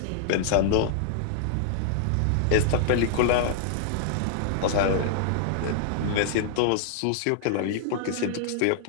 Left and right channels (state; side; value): different; both; correlation -0.01